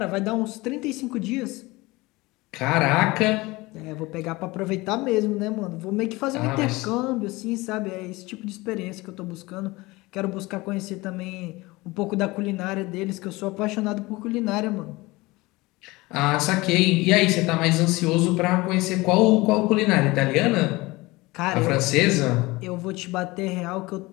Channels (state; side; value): quieter; right; 21.7 dB